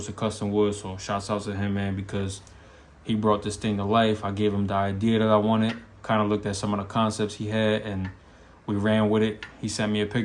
of custom wood. So shouts out to him, man, because he brought this thing to life. I gave him the idea that I wanted, kind of looked at some of the concepts he had, and we ran with it. He sent me a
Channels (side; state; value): both; identical; correlation 1.00